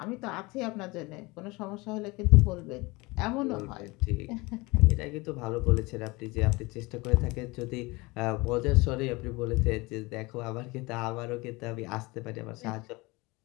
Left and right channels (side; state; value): right; quieter; 23.8 dB